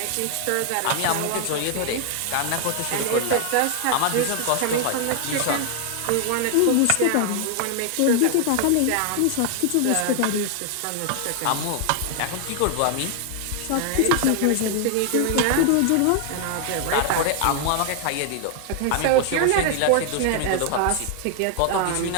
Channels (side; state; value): both; different; correlation 0.00